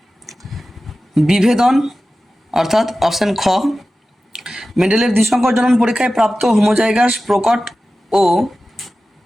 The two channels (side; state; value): both; normal; correlation 0.95